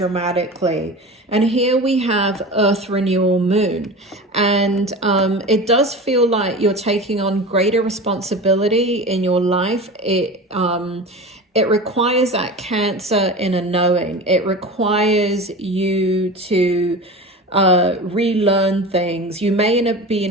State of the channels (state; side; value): normal; both; correlation 0.32